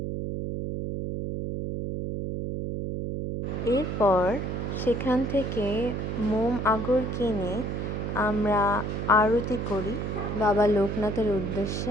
এরপর সেখান থেকে মোম আগর কিনে আমরা আরতি করি বাবা লোকনাথের উদ্দেশ্যে।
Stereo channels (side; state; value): right; noise; hum, 3 dB below the sound